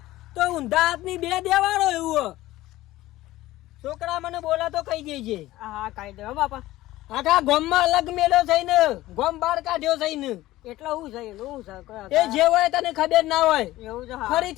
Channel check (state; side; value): quieter; right; 16.5 dB